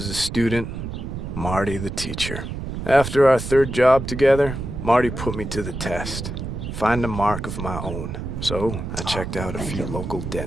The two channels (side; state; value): right; noise; rumble, 6 dB below the sound